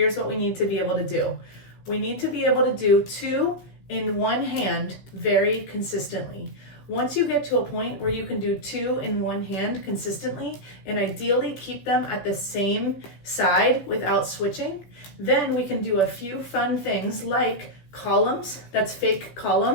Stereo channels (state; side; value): late; right; 16 ms